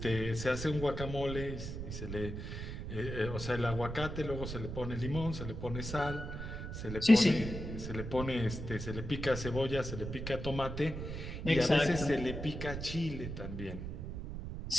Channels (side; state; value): right; noise; rumble, 6 dB below the sound